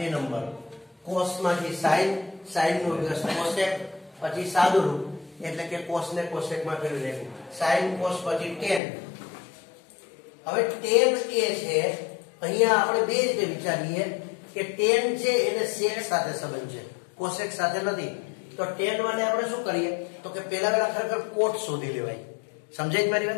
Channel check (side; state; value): right; drops out; at 8.8 s